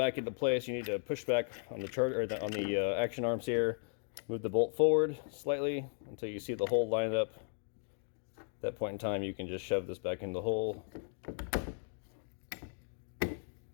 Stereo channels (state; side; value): silent; right; 54 dB below the other